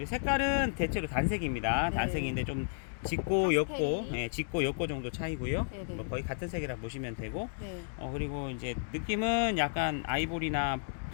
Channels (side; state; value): right; silent; digital silence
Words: 색깔은 대체로 단색입니다. 네. 단색인데 좀 짙고 옅고, 파스텔이. 짙고 옅고 정도 차이고요. 네네. 뭐 거의 같은 색이라 보시면 되고, 네. 그리고 이제 느낌은 약간 아이보리나